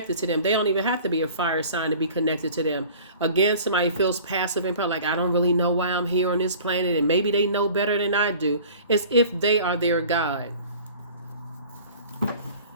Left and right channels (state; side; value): inverted; both; correlation -0.45